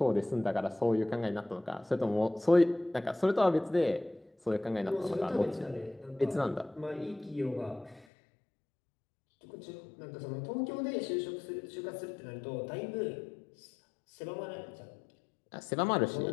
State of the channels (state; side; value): drops out; right; at 8.1 s